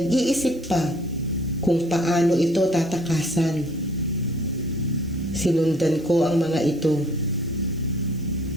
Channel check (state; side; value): noise; right; hiss, 27 dB below the sound